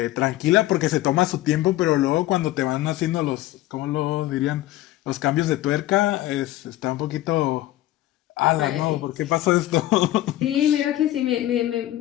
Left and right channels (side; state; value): right; quieter; 15.3 dB